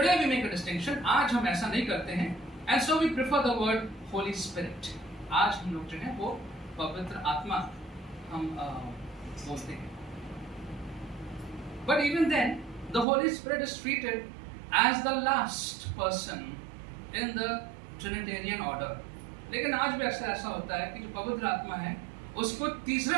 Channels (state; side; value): drops out; left; at 13.1 s